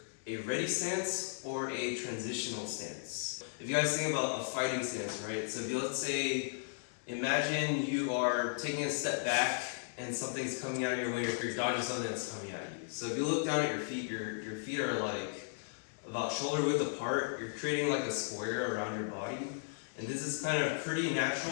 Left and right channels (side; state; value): right; silent; digital silence